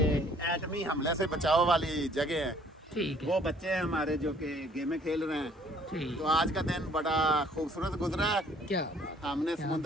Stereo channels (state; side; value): normal; both; correlation 0.58